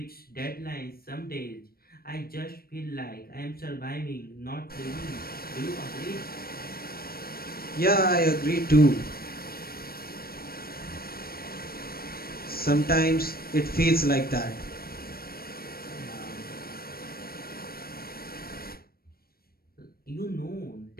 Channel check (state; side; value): late; right; 0.44 ms